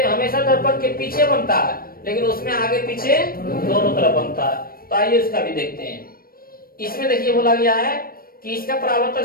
हमेशा दर्पण के पीछे बनता है, लेकिन उसमें आगे पीछे दोनों तरफ बनता है। तो आइए उसका भी देखते हैं। इसमें देखिए बोला गया है कि इसका परावर्तक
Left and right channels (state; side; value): late; right; 0.43 ms